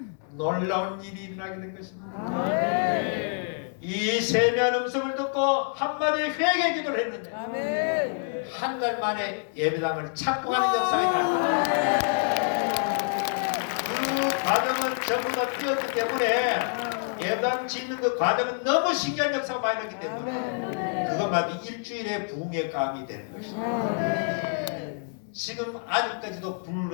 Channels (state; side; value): silent; right; 60 dB below the other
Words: 놀라운 일이 일어나게 된 것입니다. 이 세미한 음성을 듣고 한마디 회개 기도를 했는데 한 달 만에 예배당을 착공하는 역사이다. 그 과정은 전부 다 뛰었기 때문에 예배당 짓는 그 과정은 너무 신기한 역사가 많이 났기 때문에 그것만 일주일에 부흥의 감이 되는 것입니다. 지금 아직까지도